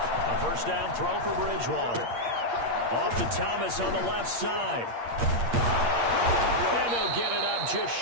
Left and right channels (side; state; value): left; late; 8.6 ms